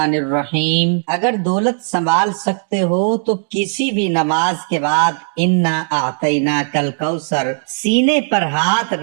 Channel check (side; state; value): left; silent; digital silence